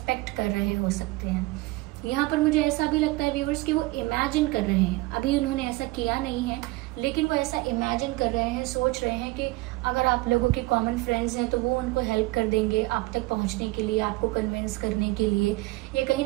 कर रहे हो सकते हैं। यहाँ पर मुझे ऐसा भी लगता है व्यूअर्स कि वो इमेजिन कर रहे हैं, अभी उन्होंने ऐसा किया नहीं है लेकिन वो ऐसा इमेजिन कर रहे हैं, सोच रहे हैं कि अगर आप लोगों के कॉमन फ्रेंड्स हैं तो वो उनको हेल्प कर देंगे आप तक पहुंचने के लिए, आपको कन्विंस करने के लिए, या कहीं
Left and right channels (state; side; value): quieter; left; 21.2 dB